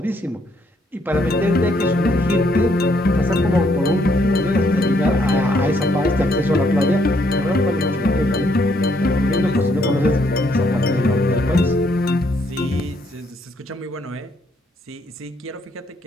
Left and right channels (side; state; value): both; normal; correlation 0.71